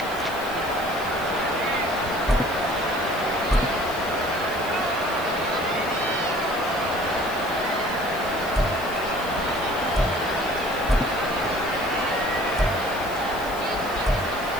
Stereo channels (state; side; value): noise; left; hiss, 15 dB below the sound